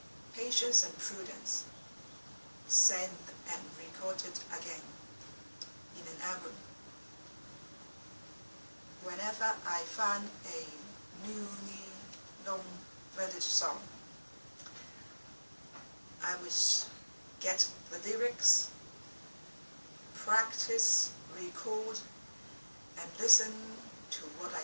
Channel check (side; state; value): both; inverted; correlation -1.00